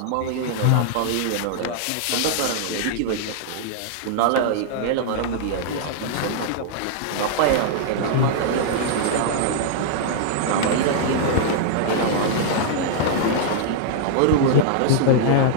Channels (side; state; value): both; different; correlation -0.01